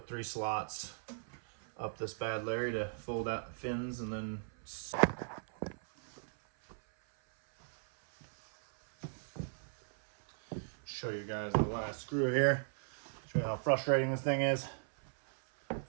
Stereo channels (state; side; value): silent; left; 53 dB below the other